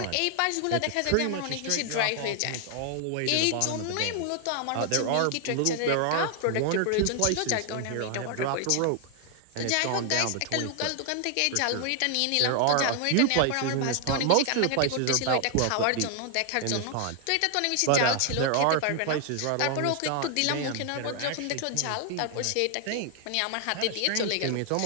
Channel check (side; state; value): both; different; correlation 0.00